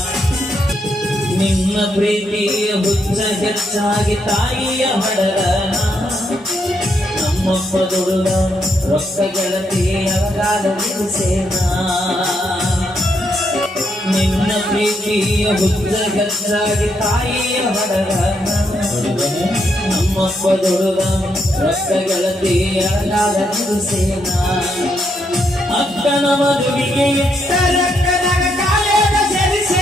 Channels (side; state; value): both; normal; correlation 0.77